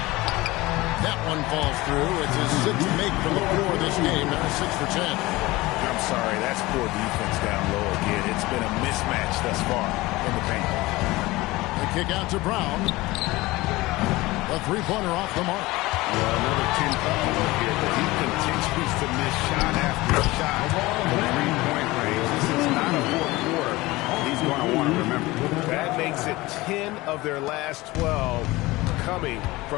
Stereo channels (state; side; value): quieter; right; 20.2 dB